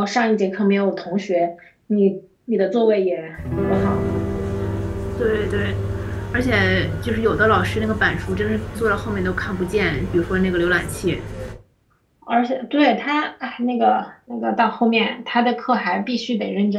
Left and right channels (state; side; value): identical; both; correlation 1.00